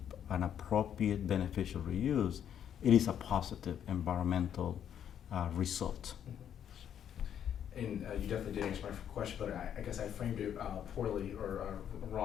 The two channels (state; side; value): quieter; right; 9.3 dB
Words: an appropriate beneficial reuse, it is a positive environmental result. And you definitely did answer my question, but I guess I framed it poorly or